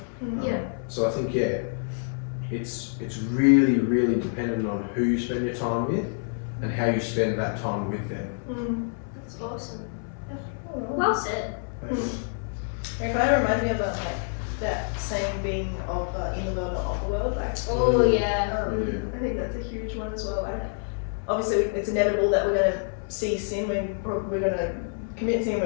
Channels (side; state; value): right; silent; 60 dB below the other